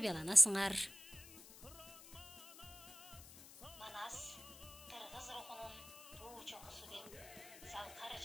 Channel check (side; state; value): left; noise; hiss, 17 dB below the sound